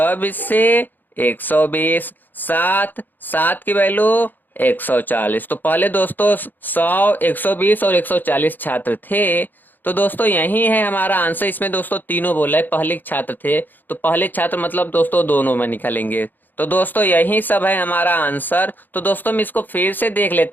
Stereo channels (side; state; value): right; late; 0.088 ms